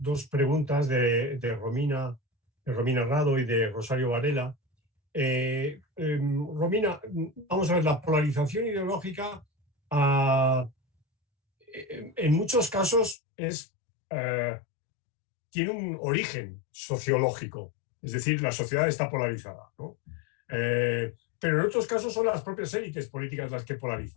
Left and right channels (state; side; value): drops out; right; at 13.2 s